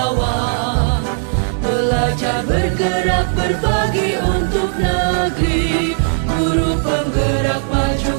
Belajar, bergerak, berbagi untuk negeri. Guru penggerak,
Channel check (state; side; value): silent; left; 65 dB below the other